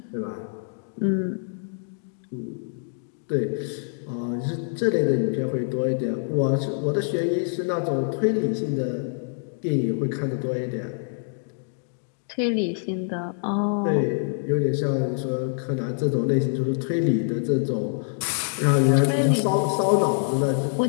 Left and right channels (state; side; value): silent; right; digital silence